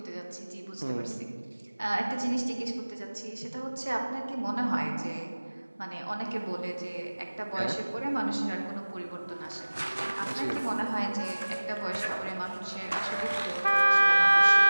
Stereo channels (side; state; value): both; inverted; correlation -1.00